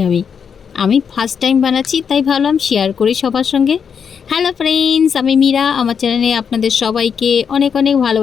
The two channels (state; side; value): quieter; right; 6.9 dB